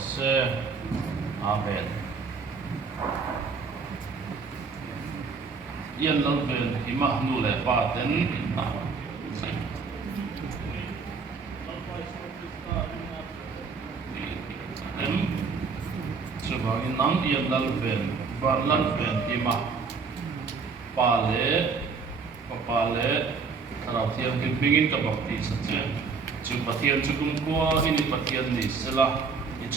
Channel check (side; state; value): left; quieter; 5.0 dB